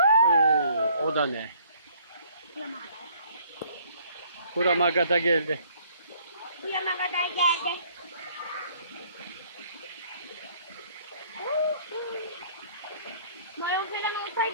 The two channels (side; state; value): both; inverted; correlation -0.59